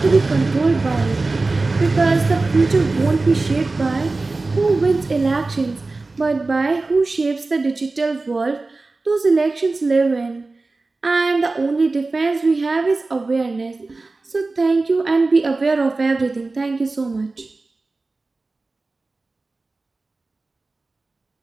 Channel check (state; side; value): quieter; left; 3.5 dB